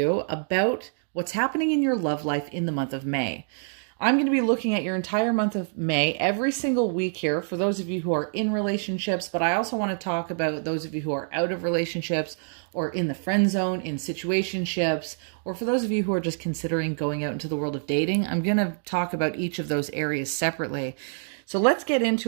about what's happening in your love life in the month of May. I'm going to be looking at your entire month of May every single week here for those of you who are in relationships, but I also want to talk about those of you who are out of relationships or in the friend zone, in situationships, or for those of you who are just considering going out into the world of dating. I'm going to talk about each of those areas separately. So let's get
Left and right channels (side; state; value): left; silent; digital silence